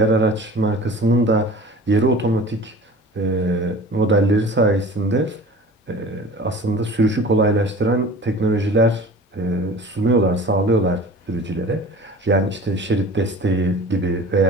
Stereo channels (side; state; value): both; normal; correlation 0.41